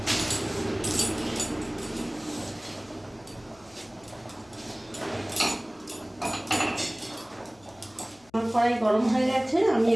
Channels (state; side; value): noise; left; hum, 29 dB below the sound